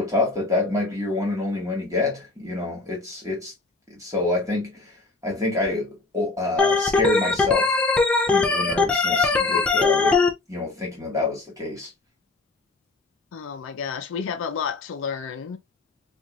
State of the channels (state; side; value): quieter; right; 3.2 dB